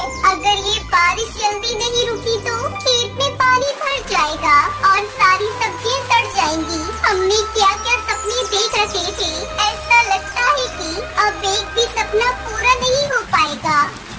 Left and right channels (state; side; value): identical; both; correlation 1.00